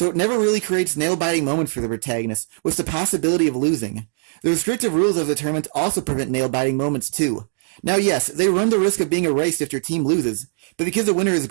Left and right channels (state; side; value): silent; left; digital silence